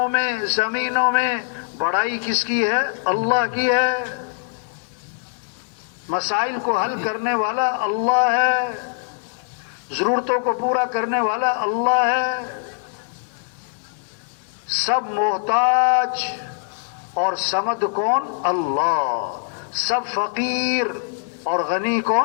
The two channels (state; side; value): silent; right; 64 dB below the other